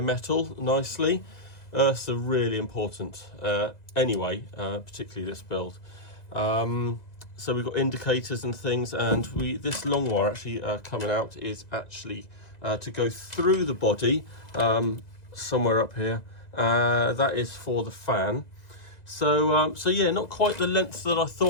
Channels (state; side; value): late; right; 2.0 ms